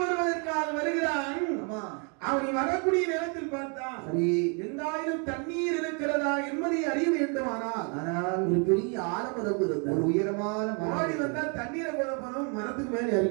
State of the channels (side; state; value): left; quieter; 36.9 dB